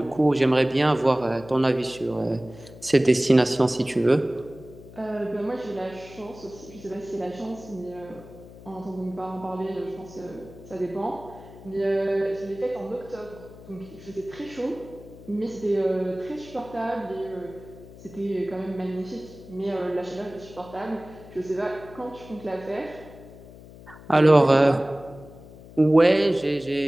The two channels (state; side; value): noise; left; hum, 18 dB below the sound